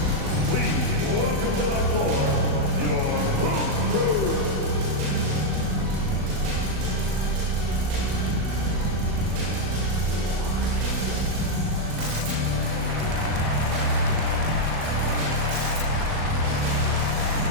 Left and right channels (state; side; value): late; left; 37 ms